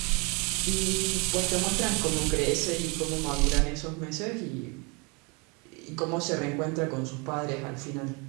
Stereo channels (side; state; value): left; quieter; 30.4 dB